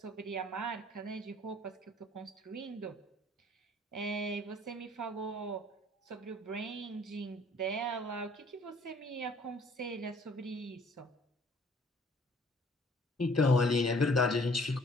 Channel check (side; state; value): both; normal; correlation 0.57